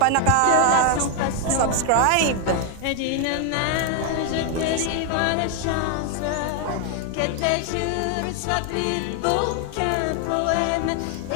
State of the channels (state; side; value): different; both; correlation 0.01